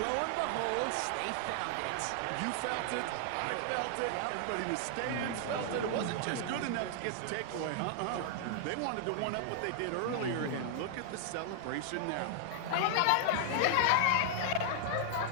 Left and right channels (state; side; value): different; both; correlation 0.00